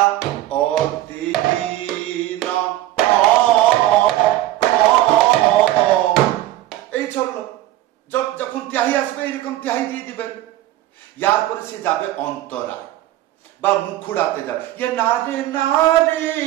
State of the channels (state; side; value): quieter; left; 14.9 dB